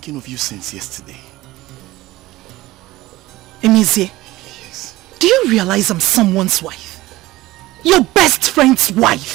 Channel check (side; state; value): left; quieter; 17.9 dB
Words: of you since yesterday. Emezi, Yes. do you realize I'm someone's wife? Your best friend's